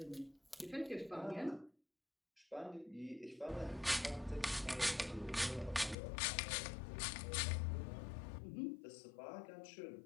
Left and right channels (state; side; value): drops out; right; at 6.0 s